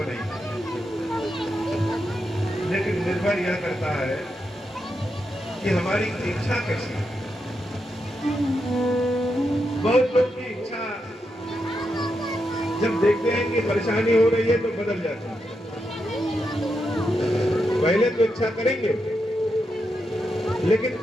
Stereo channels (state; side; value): normal; both; correlation 0.85